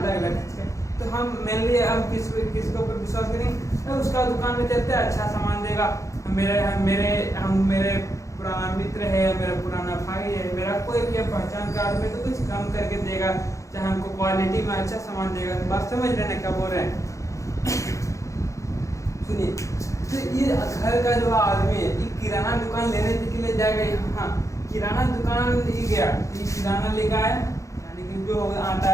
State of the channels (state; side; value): late; right; 0.15 ms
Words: अलग चीज़ का, तो हम मेनली हम किसके ऊपर विश्वास करेंगे? तो उसका दुकान में चलते अच्छा सामान देगा। मेरे पुराना मित्र है, मेरा पुराना भाई है, मेरा कोई भी पहचान का आदमी तो कुछ कम करके देगा, चाहे हमको क्वालिटी में अच्छा सामान देगा। बात समझ रहे हैं क्या बोल रहे हैं? सुनिए, तो ये घर का जो आदमी है ये किराना दुकान लेने के लिए जाएगा यहाँ, किराना दुकान ये गया, ये किराना लेकर आया, यानी कि जो आटा